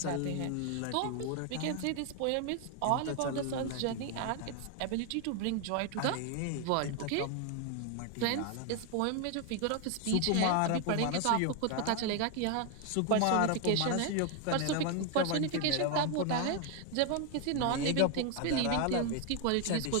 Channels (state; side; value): different; both; correlation 0.01